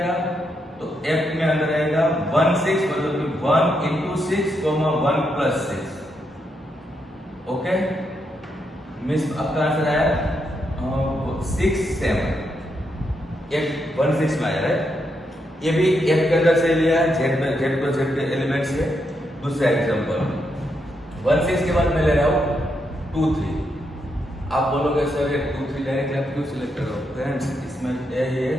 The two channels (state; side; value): normal; both; correlation 0.81